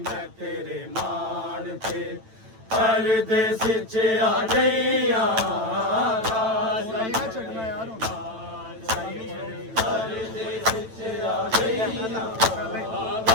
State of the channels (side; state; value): left; late; 9.0 ms